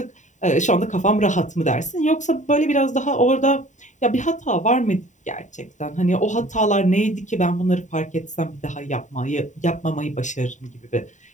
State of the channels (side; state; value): right; late; 0.36 ms